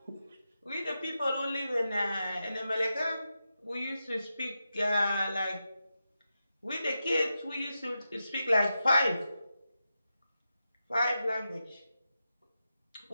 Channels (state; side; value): inverted; both; correlation -0.89